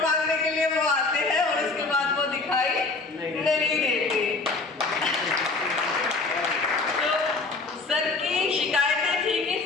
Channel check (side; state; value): right; quieter; 3.7 dB